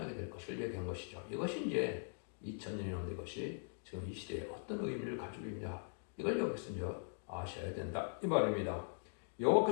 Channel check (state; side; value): silent; right; digital silence